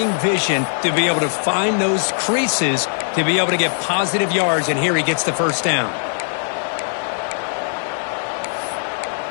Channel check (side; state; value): right; silent; digital silence